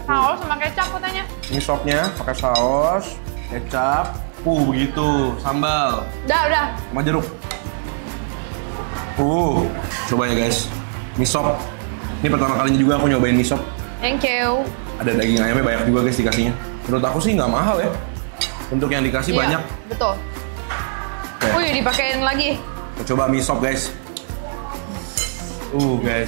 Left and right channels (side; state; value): left; silent; digital silence